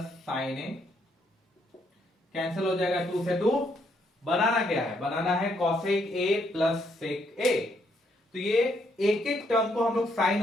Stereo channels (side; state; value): both; normal; correlation 0.73